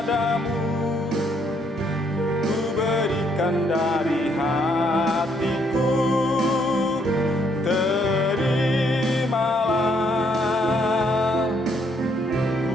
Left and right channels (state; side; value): normal; both; correlation 0.70